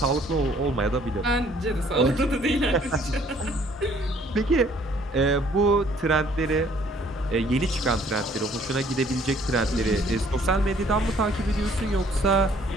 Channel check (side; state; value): both; normal; correlation 0.60